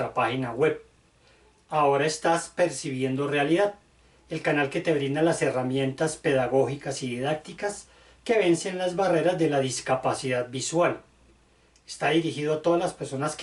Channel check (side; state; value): both; identical; correlation 1.00